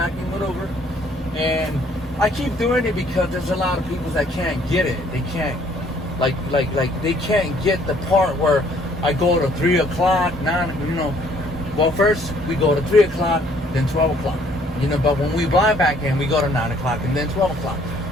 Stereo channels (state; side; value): normal; both; correlation 0.62